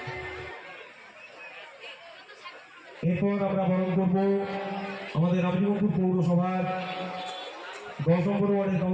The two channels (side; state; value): both; identical; correlation 1.00